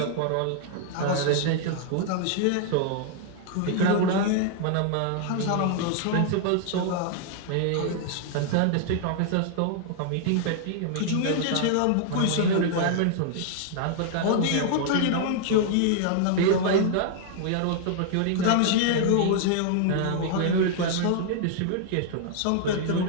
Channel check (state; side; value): different; both; correlation 0.00